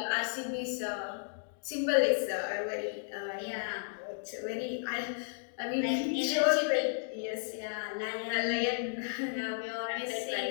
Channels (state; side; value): silent; right; digital silence